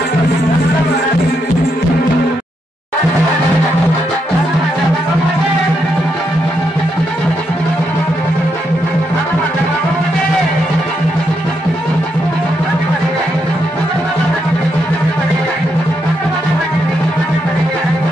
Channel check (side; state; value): both; normal; correlation 0.80